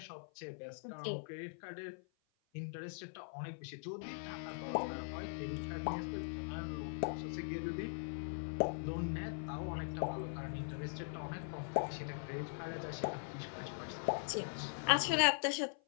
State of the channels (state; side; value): silent; right; 50 dB below the other